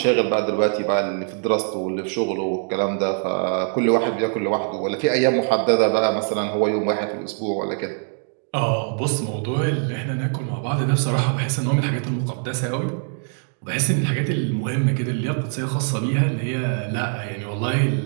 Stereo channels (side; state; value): left; silent; 55 dB below the other